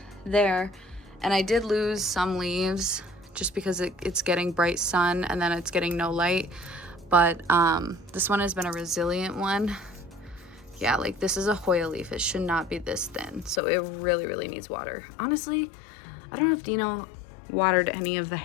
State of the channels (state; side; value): drops out; right; at 13.6 s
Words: there. And I did lose some leaves just because it's getting bright sun and then it's getting no light. But this one has been a resilient one. Yeah, like this is a Hoya leaf. It should not be this thin. So it really, really needs water. Honestly, I don't know if Dino watered any of the